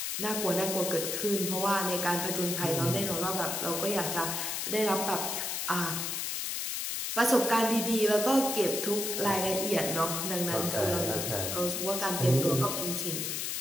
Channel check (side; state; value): left; noise; hiss, 2 dB below the sound